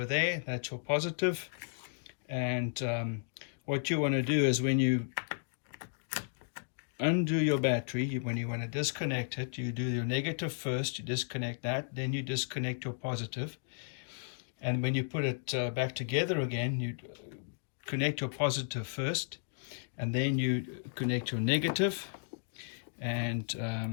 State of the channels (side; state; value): right; silent; digital silence